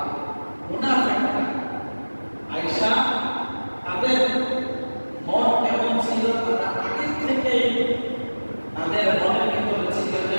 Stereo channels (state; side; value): inverted; both; correlation -1.00